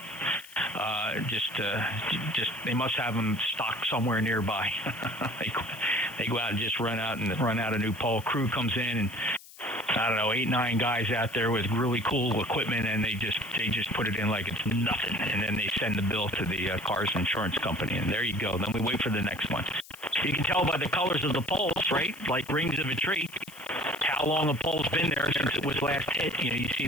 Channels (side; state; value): left; noise; hiss, 19 dB below the sound